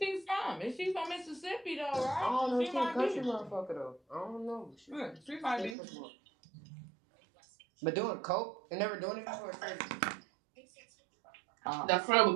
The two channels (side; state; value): left; drops out; at 5.8 s